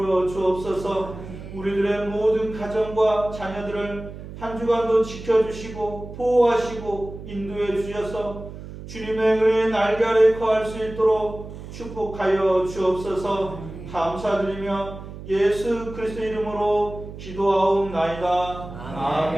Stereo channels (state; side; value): noise; right; hum, 12 dB below the sound